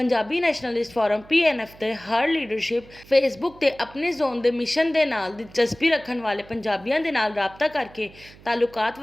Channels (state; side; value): noise; right; hum, 22 dB below the sound